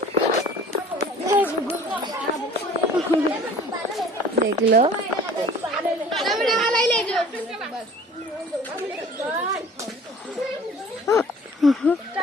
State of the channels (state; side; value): normal; both; correlation 0.47